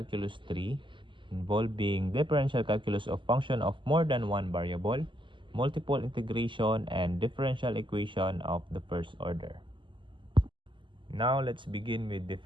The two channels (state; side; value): late; left; 0.24 ms